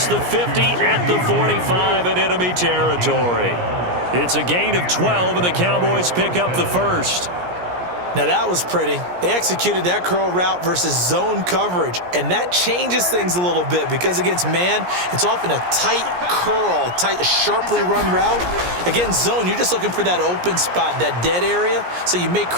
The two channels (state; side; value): late; left; 17 ms